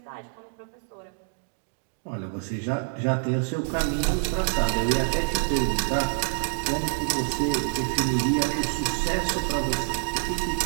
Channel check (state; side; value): silent; left; 60 dB below the other